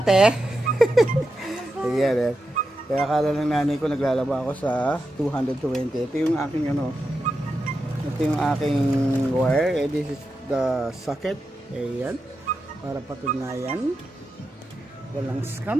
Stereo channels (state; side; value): normal; both; correlation 0.88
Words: Ayan, kaya akala ng nanay ko naglalaba ako sa 220. Ito yung aking ito yung aking wire. This is the socket. Ayan, para patunayan walang